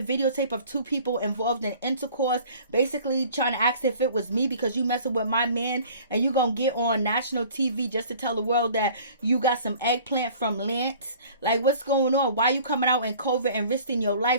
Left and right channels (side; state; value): both; inverted; correlation -0.49